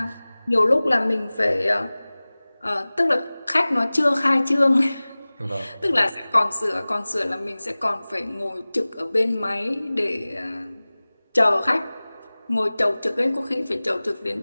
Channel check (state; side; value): inverted; both; correlation -0.99